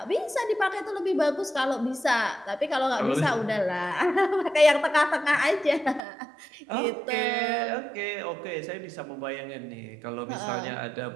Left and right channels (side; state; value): left; drops out; at 6.0 s